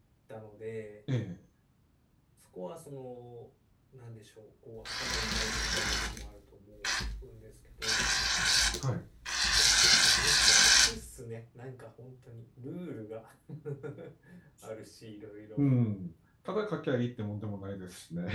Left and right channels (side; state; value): both; identical; correlation 1.00